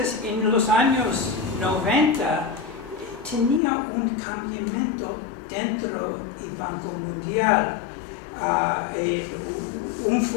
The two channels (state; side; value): drops out; right; at 3.6 s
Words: en los años 90, tenía un cambiamiento dentro del Banco Mundial. Un